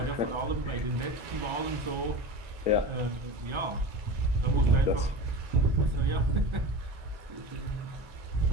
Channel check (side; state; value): left; late; 1.4 ms